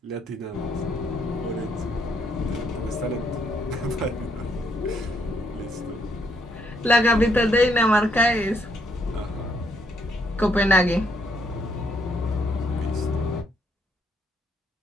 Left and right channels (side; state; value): both; normal; correlation 0.73